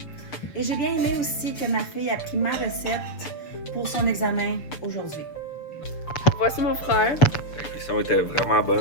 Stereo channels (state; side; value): late; right; 6.7 ms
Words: Et j'ai bien aimé aussi que ma fille a pris ma recette pour son examen aujourd'hui. Voici mon frère. La cuisson était vraiment